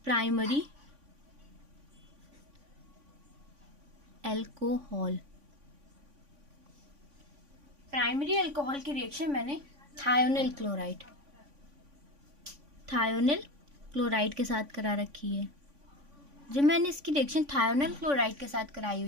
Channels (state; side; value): late; left; 3.5 ms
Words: प्राइमरी अल्कोहल की रिएक्शन मैंने थायोनिल क्लोराइड के साथ करा रखी है। जब मैंने इसकी रिएक्शन थायोनिल क्लोराइड के साथ कराई